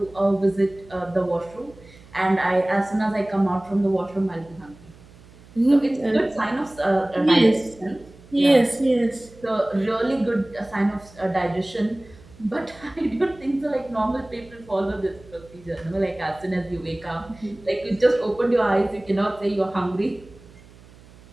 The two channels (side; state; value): right; noise; hum, 23 dB below the sound